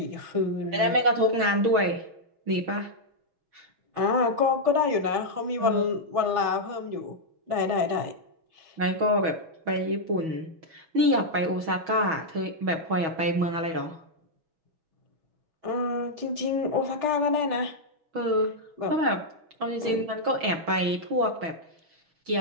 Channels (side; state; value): left; late; 6.2 ms